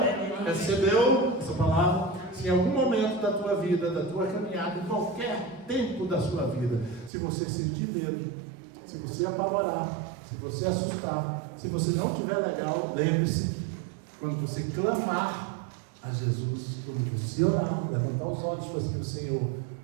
Recebeu essa palavra? Se em algum momento da tua vida, da tua caminhada, em qualquer tempo da sua vida, se você sentir medo, se você apavorar, se você assustar, se você não estiver legal, lembre-se, quando você clamar a Jesus, quando você orar, levantar os olhos para o Senhor,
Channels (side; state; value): left; drops out; at 7.1 s